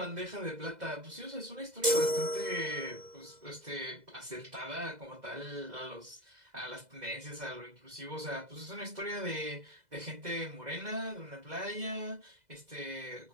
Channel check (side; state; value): left; late; 2.0 ms